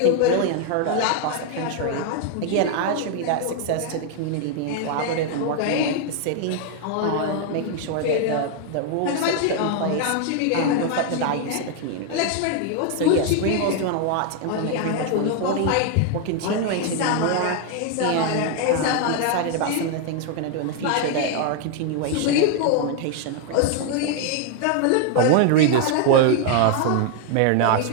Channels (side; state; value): both; different; correlation 0.00